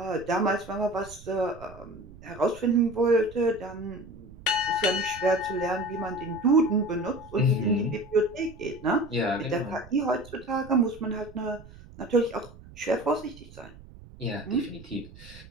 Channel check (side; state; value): right; noise; rumble, 19 dB below the sound